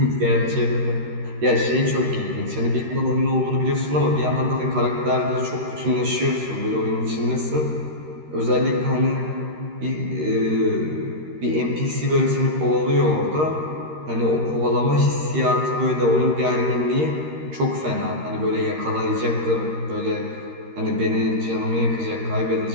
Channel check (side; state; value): left; late; 13 ms